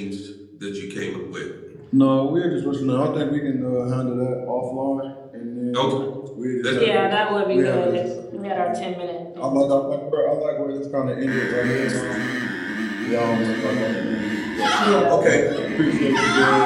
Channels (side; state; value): both; identical; correlation 1.00